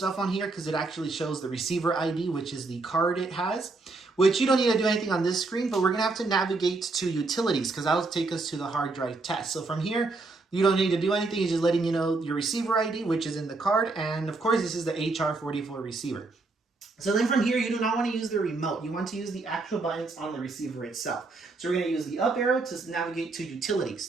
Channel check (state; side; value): quieter; left; 3.6 dB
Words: on here because it actually shows the receiver ID, which is the card it has, which you don't need to do anything on this screen, but we're going to have to navigate to utilities because that'll take us to the hard drive test. So from here, you don't need to do anything. It's just letting you know your receiver ID, which is in the card. And of course, this is the HR44 receiver. So then from here, you do not want to use the remote. You want to use the actual buttons on the receiver itself. So we're going to use the up arrow to navigate to